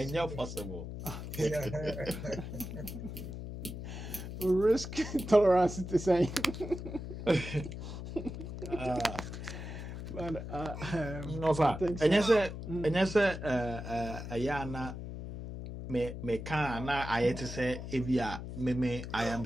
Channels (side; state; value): left; noise; hum, 8 dB below the sound